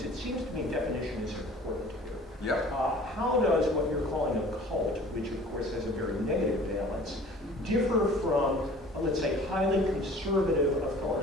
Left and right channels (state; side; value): normal; both; correlation 0.47